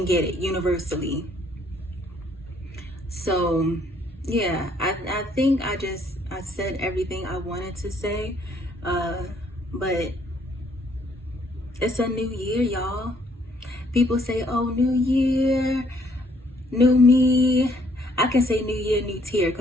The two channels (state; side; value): normal; both; correlation 0.66